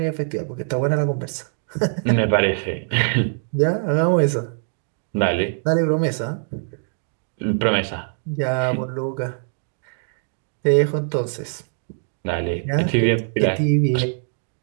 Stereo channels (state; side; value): silent; left; digital silence